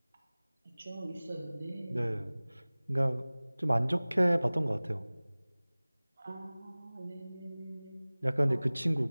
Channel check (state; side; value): inverted; both; correlation -0.99